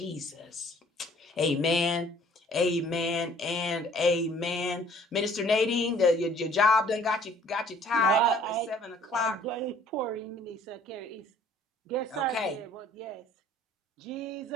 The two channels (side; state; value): both; normal; correlation 0.57